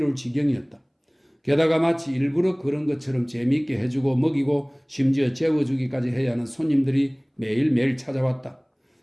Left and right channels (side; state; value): both; identical; correlation 1.00